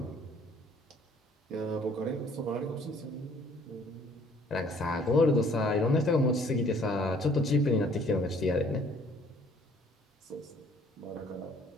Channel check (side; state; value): both; normal; correlation 0.59